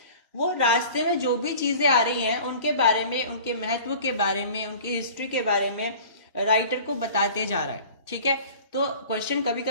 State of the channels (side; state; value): both; inverted; correlation -0.43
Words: वो रास्ते में जो भी चीजें आ रही हैं उनके बारे में, उनके महत्व के बारे में, उनकी हिस्ट्री के बारे में राइटर को बताते जा रहा है, ठीक है। तो क्वेश्चन कभी